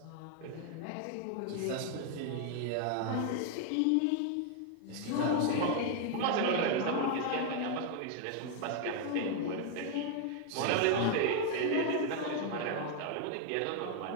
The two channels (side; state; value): both; different; correlation 0.00